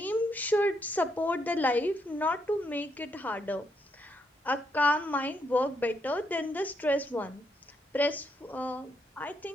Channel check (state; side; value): normal; both; correlation 0.77